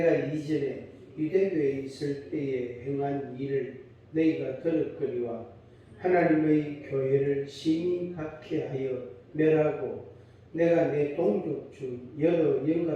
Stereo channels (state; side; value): identical; both; correlation 1.00